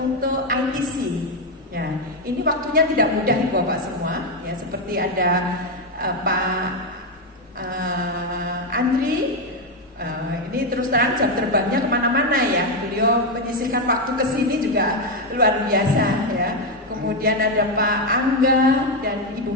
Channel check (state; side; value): normal; both; correlation 0.06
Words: ITC. Ya, ini waktunya tidak mudah Ibu Bapak semua. Ya, seperti ada Pak Andri. Ini terus terang jam terbangnya kemana-mana ya. Beliau menyisihkan waktu ke sini juga luar biasa ya. Kemudian ada Pak Angga dan Ibu